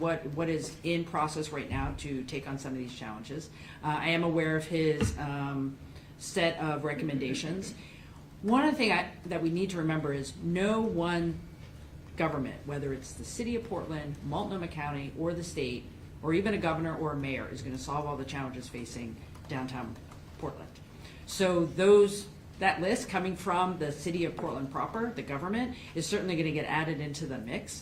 is in process right now to take on some of these challenges. I am aware of his set of recommendations. One of the things that we need to remember is no one government, whether it's the city of Portland, Multnomah County, or the state, or even a governor or a mayor, is going to solve all the challenges facing downtown Portland. So that list coming from the city of Portland proper, the government, is certainly going to get added into the mix.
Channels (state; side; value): identical; both; correlation 1.00